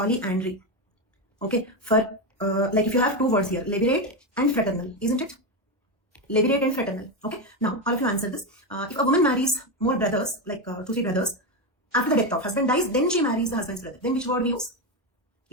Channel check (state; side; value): normal; both; correlation 0.11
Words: okay, for if you have two words here, levirate and fraternal, isn't it? Levirate and fraternal. Okay, now all of you answer this. If a woman marries more brothers, 2-3 brothers, after the death of husband dies, then she marries the husband's brother. Then which word we use?